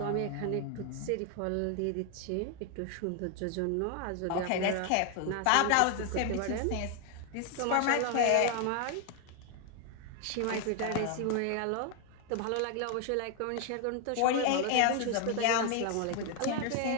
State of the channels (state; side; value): different; both; correlation 0.01